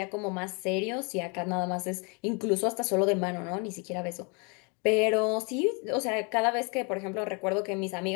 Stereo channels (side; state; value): right; quieter; 33.8 dB